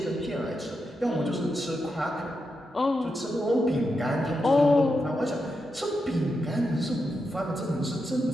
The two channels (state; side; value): normal; both; correlation 0.86